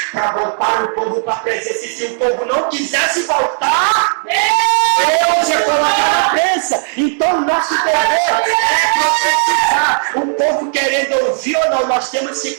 para voltar o povo para a presença. E se o povo não quisesse voltar, Deus ia colocar na prensa. Então nosso dever é profetizar. O povo querendo ouvir ou não, nós temos que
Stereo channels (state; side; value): silent; left; digital silence